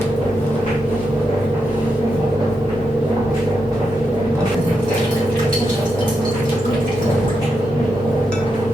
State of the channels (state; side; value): normal; both; correlation 0.84